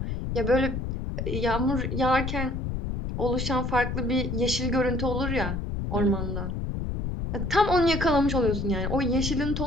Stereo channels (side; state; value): left; noise; rumble, 3 dB below the sound